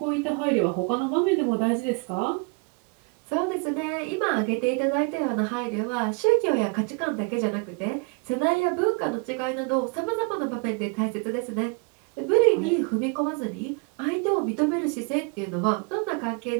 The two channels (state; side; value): quieter; left; 32.2 dB